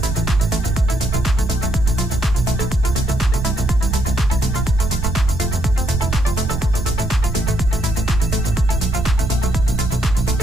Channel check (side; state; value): right; noise; rumble, 4 dB below the sound